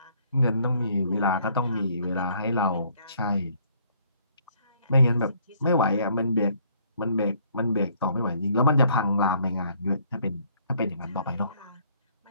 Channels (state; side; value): inverted; both; correlation -0.64